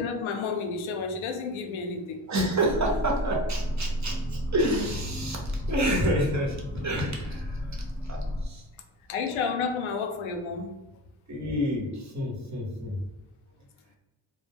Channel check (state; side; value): normal; both; correlation 0.28